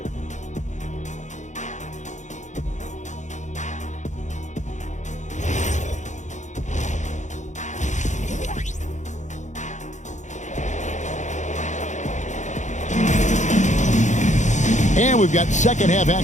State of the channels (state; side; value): late; right; 0.35 ms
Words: And we've got second half